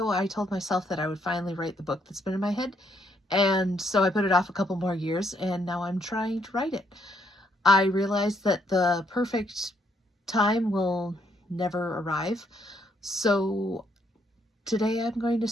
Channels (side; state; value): both; normal; correlation 0.72